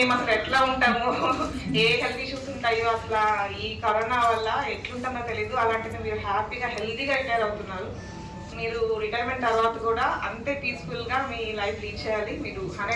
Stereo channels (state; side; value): identical; both; correlation 1.00